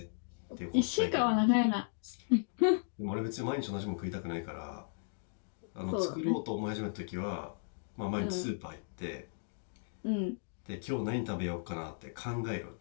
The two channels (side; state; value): right; silent; digital silence